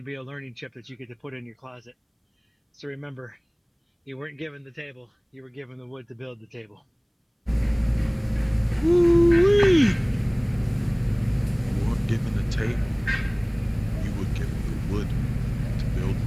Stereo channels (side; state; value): both; identical; correlation 1.00